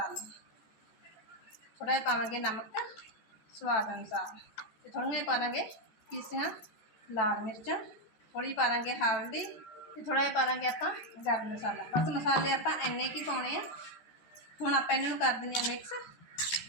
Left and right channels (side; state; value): right; late; 14 ms